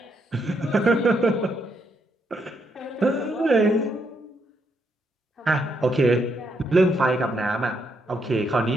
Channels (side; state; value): both; normal; correlation 0.76